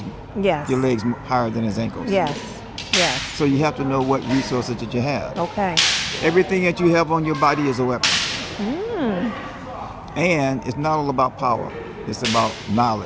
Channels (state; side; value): identical; both; correlation 1.00